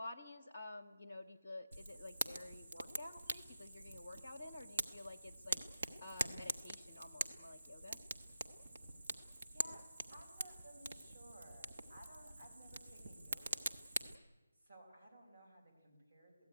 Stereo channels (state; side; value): inverted; both; correlation -0.90